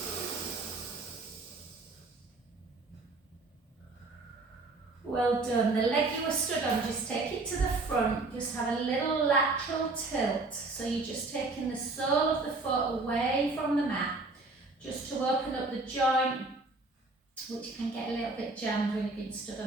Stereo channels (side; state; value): left; quieter; 3.4 dB